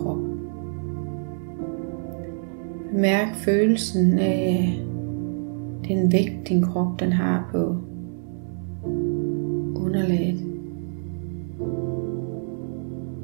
Mærk følelsen af den vægt, din krop den har på underlaget.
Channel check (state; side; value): silent; left; digital silence